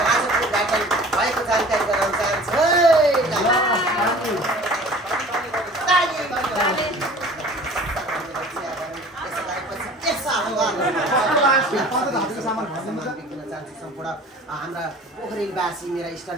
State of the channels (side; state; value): both; normal; correlation 0.45